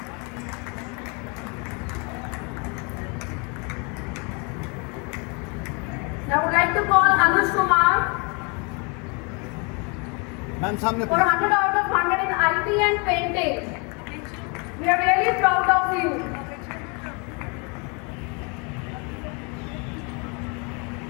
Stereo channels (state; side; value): quieter; right; 32.8 dB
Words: I would like to call Anush Kumar. Ma'am सामने for 100 out of 100 in IT and painting. We are really proud of you.